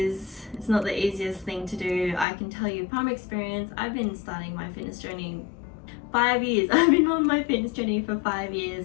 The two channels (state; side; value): drops out; right; at 2.2 s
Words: not the easiest thing to do. I can tell you from experience, I've been starting my fitness journey 5 years. I've been on my fitness journey for 5